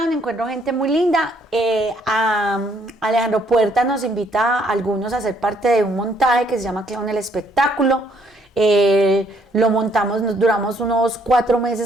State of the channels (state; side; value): normal; both; correlation 0.68